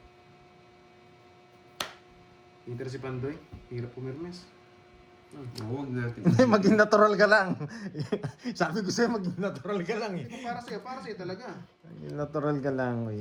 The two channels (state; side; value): identical; both; correlation 1.00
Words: Inter si Pandoy. Hirap pumirmes. Huwag natin. Hindi, maging natural ka lang. Sabi ko sa'yo, maging natural ka lang eh. Ito para sa'yo talaga. Maging natural ka lang,